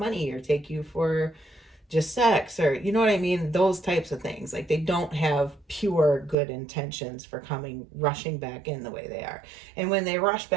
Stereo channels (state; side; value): drops out; left; at 6.4 s